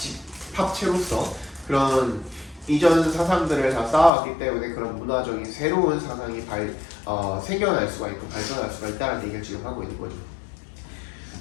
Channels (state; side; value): drops out; right; at 4.1 s